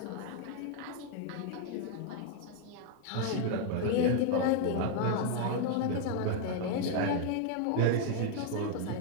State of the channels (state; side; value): different; both; correlation 0.00